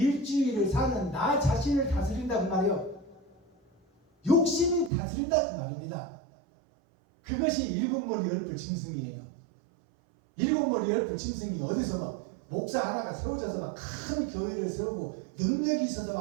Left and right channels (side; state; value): left; drops out; at 4.9 s